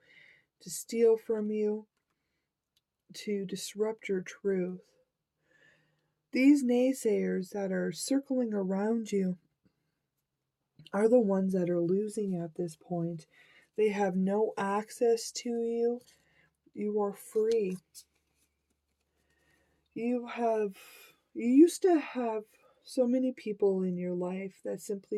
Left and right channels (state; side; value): identical; both; correlation 1.00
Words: to steal from you, to disrupt your truth. These naysayers that are circling around you are the ones that are losing at this point. They have no access to you. You are free. You used to have so many people in your life that